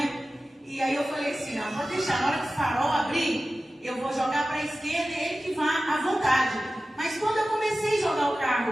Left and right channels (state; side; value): normal; both; correlation 0.95